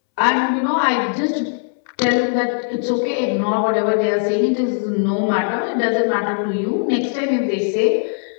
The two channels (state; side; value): silent; right; 66 dB below the other